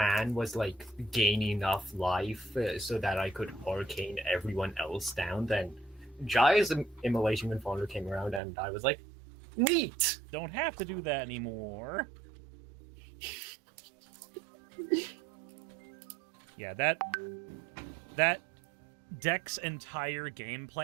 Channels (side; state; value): left; drops out; at 8.4 s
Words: was like gain enough life so that I could arcane everyone else down. Then Jaya's Immolation Confonder came around, and I was like, neat! Don't have to do that anymore. Yeah, that deck's entire game